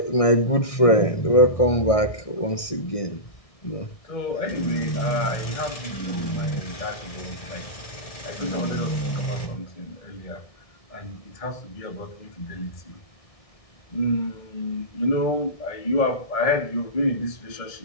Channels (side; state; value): right; late; 1.6 ms